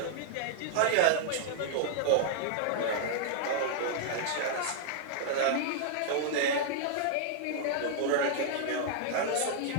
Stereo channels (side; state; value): both; different; correlation -0.01